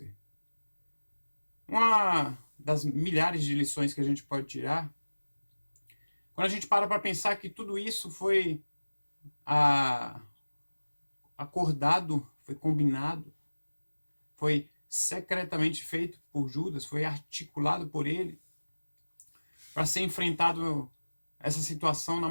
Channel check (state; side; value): inverted; both; correlation -1.00